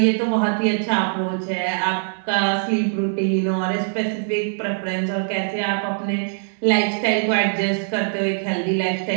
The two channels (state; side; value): silent; left; digital silence